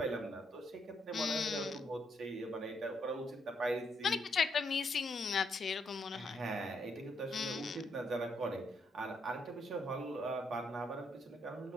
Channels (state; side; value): normal; both; correlation 0.76